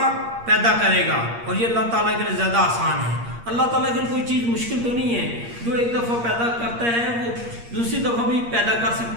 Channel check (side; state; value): left; late; 8.6 ms